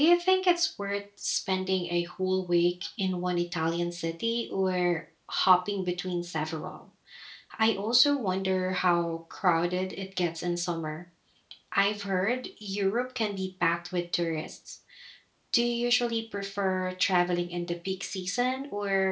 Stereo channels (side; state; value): both; identical; correlation 1.00